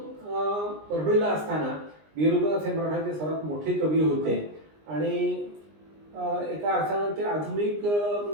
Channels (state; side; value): late; left; 20 ms